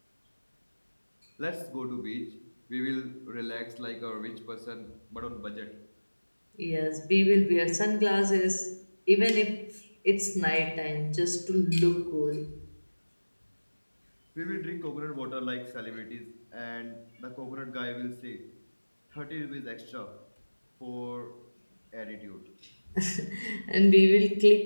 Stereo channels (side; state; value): both; inverted; correlation -1.00